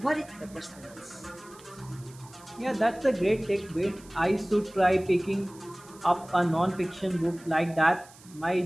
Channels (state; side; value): noise; right; hiss, 23 dB below the sound